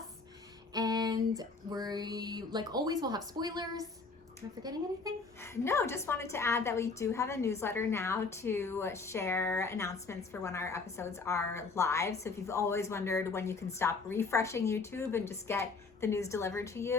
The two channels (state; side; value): quieter; right; 4.3 dB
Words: And we, like always, will have spoilers. Am I forgetting anything? No, just wanted to add that we do have a newsletter now to share announcements for when our episodes are live. So if you've always wondered when you can stop refreshing YouTube and just get the news delivered to